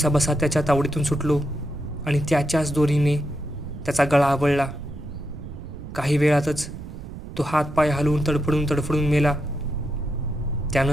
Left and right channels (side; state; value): right; noise; rumble, 11 dB below the sound